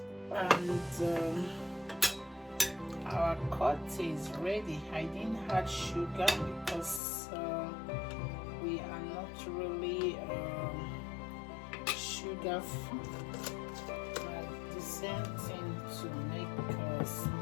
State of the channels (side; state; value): right; drops out; at 7.0 s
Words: and our cocktail is ready. I didn't add sugar because we are not really sugar free. The same thing to make